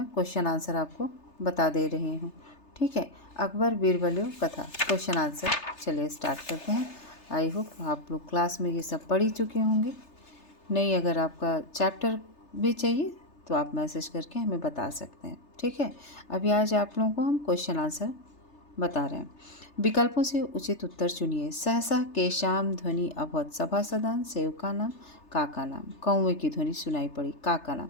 क्वेश्चन आंसर आपको बता दे रही हूँ, ठीक है। अकबर बीरबल कथा क्वेश्चन आंसर, चलिए स्टार्ट करते हैं। आई होप आप लोग क्लास में ये सब पढ़ ही चुके होंगे। नहीं, अगर आपका चैप्टर भी चाहिए तो आप मैसेज करके हमें बता सकते हैं, ठीक है। अभी आज आप लोगों को हम क्वेश्चन आंसर बता रहे हैं। विकल्पों से उचित उत्तर चुनिए। सहसा केशाम ध्वनि अभवत, सभासदान सेवका नाम काका नाम। कौवे की ध्वनि सुनाई पड़ी, काका नाम।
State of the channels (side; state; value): right; late; 3.3 ms